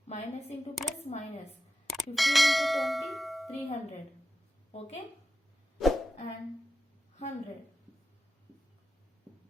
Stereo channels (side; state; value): both; normal; correlation 0.91